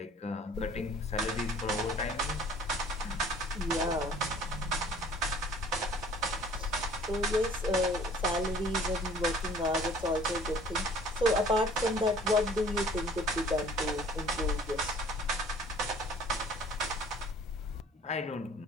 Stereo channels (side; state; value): both; normal; correlation 0.51